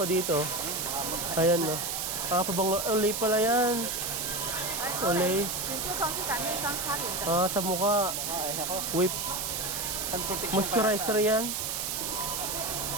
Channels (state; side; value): noise; right; hiss, 2 dB below the sound